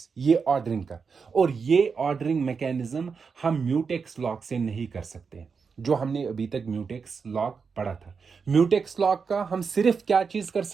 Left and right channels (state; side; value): quieter; left; 5.5 dB